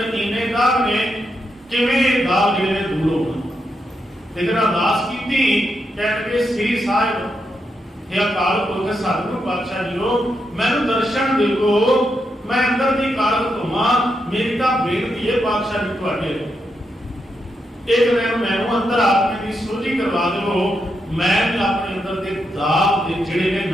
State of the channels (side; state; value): both; normal; correlation 0.83